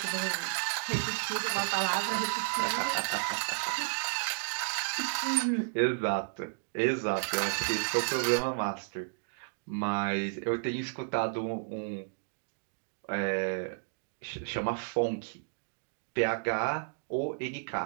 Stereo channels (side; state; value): left; silent; digital silence